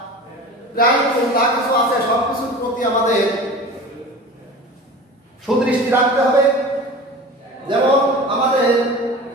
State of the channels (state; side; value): normal; both; correlation 0.36